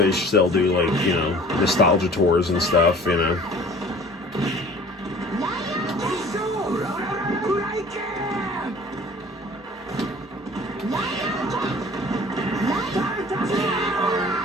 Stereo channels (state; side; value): normal; both; correlation 0.47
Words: still do, like, you know, nostalgia tours and stuff, you know.